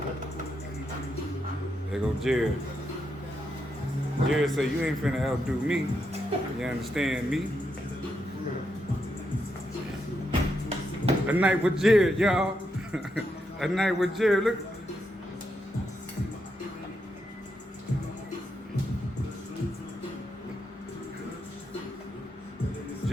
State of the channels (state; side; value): normal; both; correlation 0.82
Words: There go Jerred. Jerred said, you ain't finna outdo me. You understand me? A night with Jerred, y'all. A night with Jerred. Look.